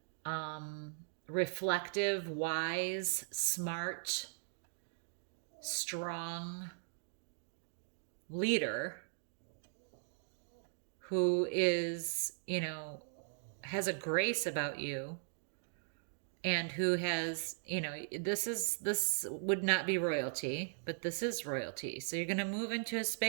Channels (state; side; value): silent; left; digital silence